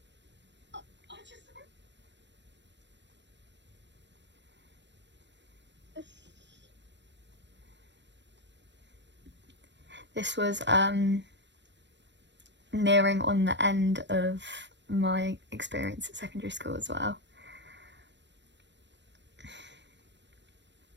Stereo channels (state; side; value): late; left; 0.52 ms